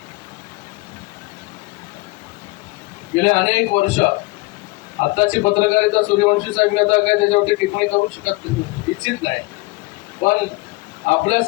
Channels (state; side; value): quieter; right; 24.0 dB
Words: गेले अनेक वर्ष, आताची पत्रकारिता सूर्यवंशी साहेब मी आता काय त्याच्यावरती टिप्पणी करू शकत इच्छित नाही, पण